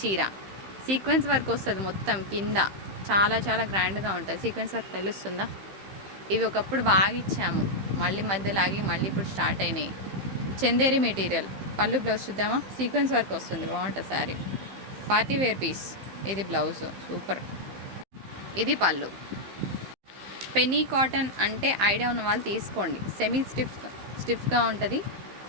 సీక్వెన్స్ వర్క్ వస్తుంది మొత్తం కింద. చాలా చాలా గ్రాండ్గా ఉంటుంది. సీక్వెన్స్ వర్క్ తెలుస్తుందా. ఇవి ఒకప్పుడు బాగా ఇచ్చాము, మళ్ళీ మధ్యలో ఆగి మళ్ళీ ఇప్పుడు స్టార్ట్ అయినాయి. చందేరి మెటీరియల్. పళ్ళు బ్లౌజ్ చూద్దామా. సీక్వెన్స్ వర్క్ వస్తుంది, బాగుంటుంది శారీ. Party wear piece. ఇది బ్లౌజ్, సూపర్. ఇది పళ్ళు. పెన్నీ కాటన్ అంటే ఐడియా ఉన్న వాళ్ళు తీసుకోండి. సెమీ స్టిఫ్గా ఉంటుంది.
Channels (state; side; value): late; left; 15 ms